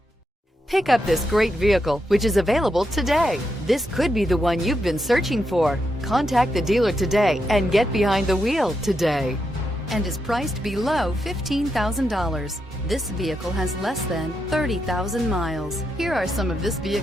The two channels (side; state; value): both; normal; correlation 0.83